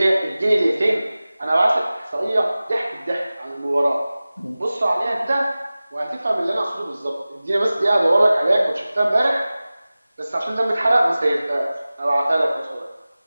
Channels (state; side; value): inverted; both; correlation -0.97